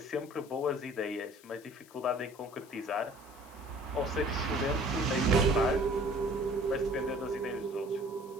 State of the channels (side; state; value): left; noise; hiss, 24 dB below the sound